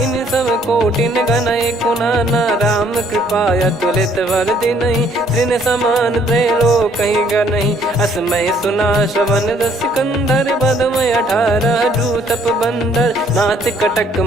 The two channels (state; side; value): normal; both; correlation 0.63